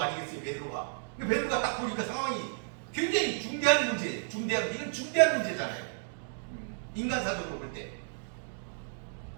아니겠어요, 베드로가? 베드로가 딱 보니까 상황이 굉장히 중대한 문제, 이건 중대한 문제잖아요. 인간사적으로 볼 때.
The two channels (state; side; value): silent; left; digital silence